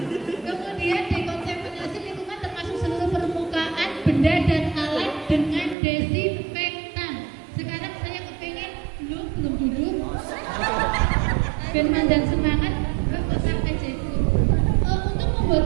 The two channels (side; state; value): left; drops out; at 5.8 s